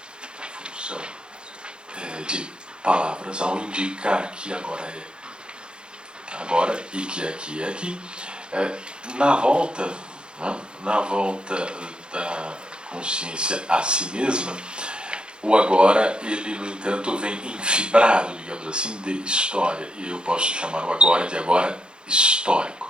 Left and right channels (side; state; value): left; late; 0.051 ms